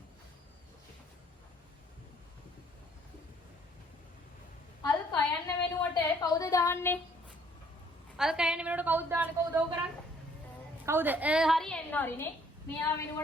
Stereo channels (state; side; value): normal; both; correlation 0.62